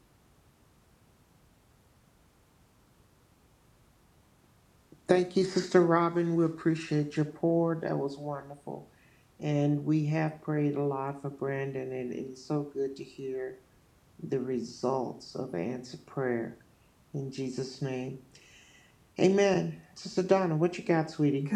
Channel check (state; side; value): identical; both; correlation 1.00